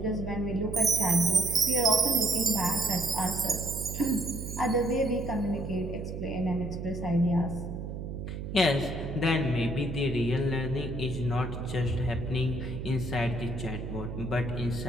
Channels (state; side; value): noise; right; hum, 6 dB below the sound